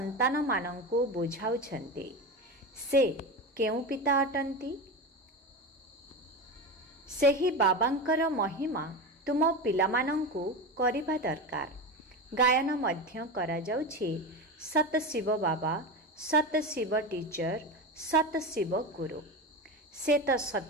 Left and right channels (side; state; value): both; normal; correlation 0.22